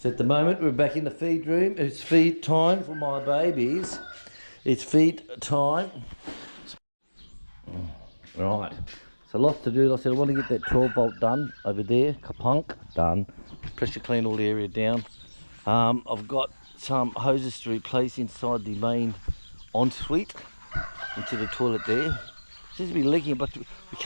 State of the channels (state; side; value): inverted; both; correlation -1.00